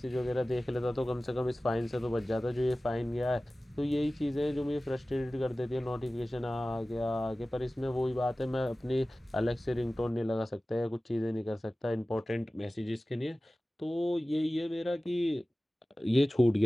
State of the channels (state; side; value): normal; both; correlation 0.97